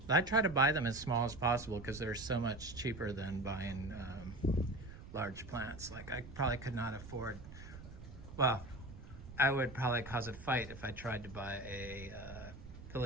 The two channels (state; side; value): noise; right; rumble, 14 dB below the sound